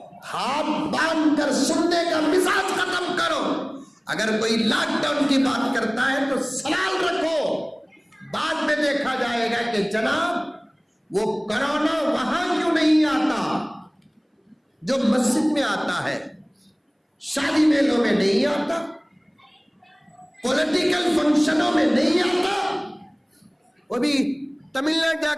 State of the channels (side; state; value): both; identical; correlation 1.00